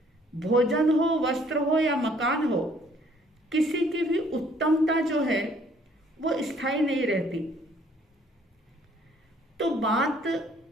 भोजन हो, वस्त्र हो या मकान हो, किसी की भी उत्तमता जो है वो स्थायी नहीं रहती। तो बात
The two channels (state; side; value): normal; both; correlation 0.61